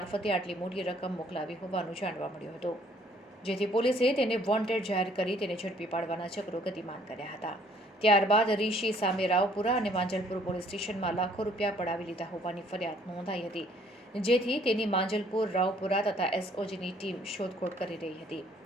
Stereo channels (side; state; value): both; normal; correlation 0.61